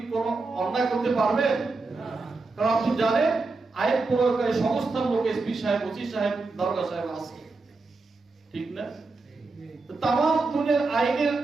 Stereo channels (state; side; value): quieter; left; 3.8 dB